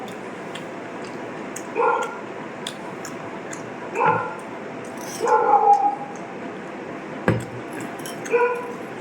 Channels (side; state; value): both; identical; correlation 1.00